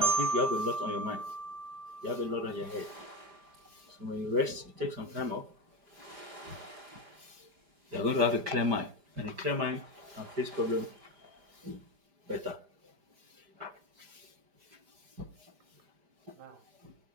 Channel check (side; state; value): left; late; 5.0 ms